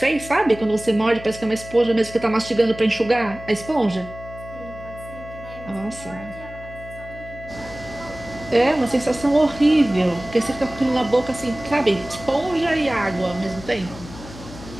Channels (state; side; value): noise; left; hum, 15 dB below the sound